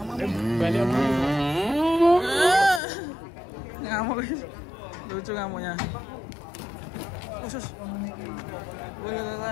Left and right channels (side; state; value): right; drops out; at 2.8 s